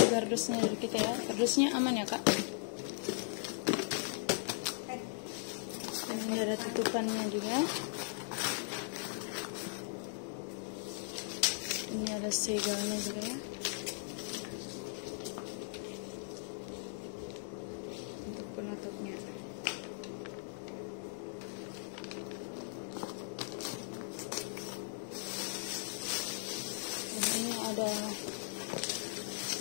kardusnya dari kita ya. Kardusnya aman ya kak. Dan ini ada tutupannya juga. Ini ada segalnya juga ya. Untuk penutupnya. Dan ini ada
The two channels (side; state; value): right; silent; digital silence